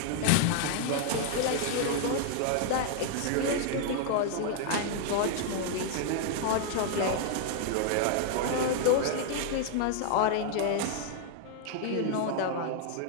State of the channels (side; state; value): both; different; correlation 0.00